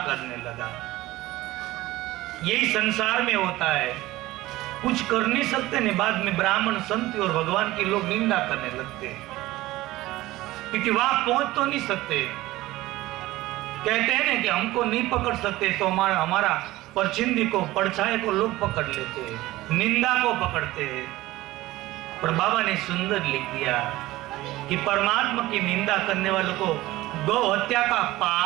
करने लगा। यही संसार में होता है, कुछ कर नहीं सकते नहीं, बाद में ब्राह्मण संत और भगवान की लोग निंदा करने लगते हैं, क्योंकि वहां पहुंच तो नहीं सकते। कहते हैं ना कि हमको नहीं पकड़ सकते तो हमारा परछिंदी को, परछाई को लोग पकड़ लेते हैं, निंदा को पकड़ते हैं। पर बाबा ने सुंदर लिख दिया कि परमात्मा की निंदा करने वालों को गौ हत्या का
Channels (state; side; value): quieter; left; 17.6 dB